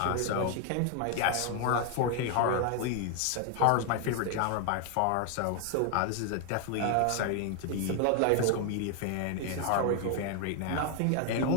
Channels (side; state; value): both; different; correlation 0.01